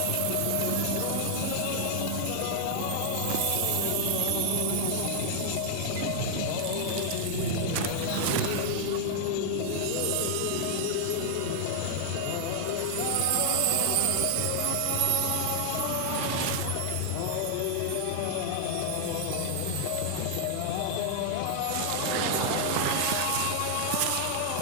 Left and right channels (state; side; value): different; both; correlation 0.00